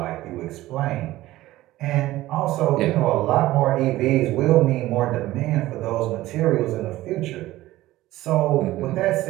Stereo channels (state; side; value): quieter; left; 16.4 dB